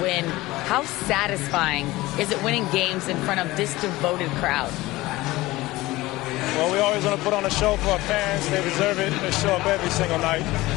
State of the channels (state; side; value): quieter; right; 18.9 dB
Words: How satisfying is it winning games in front of this devoted crowd? Well, we always want to put on a show for our fans. They deserve it. They show up every single night.